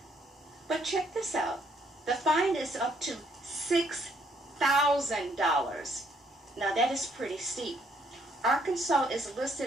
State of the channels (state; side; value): normal; both; correlation 0.69